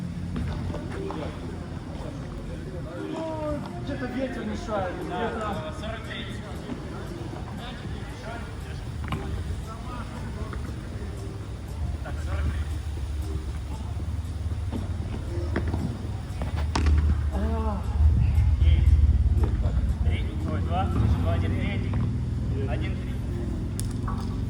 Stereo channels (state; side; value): identical; both; correlation 1.00